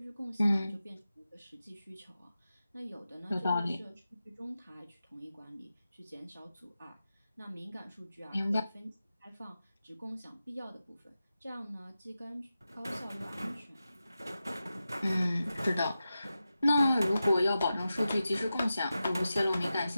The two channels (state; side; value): inverted; both; correlation -0.92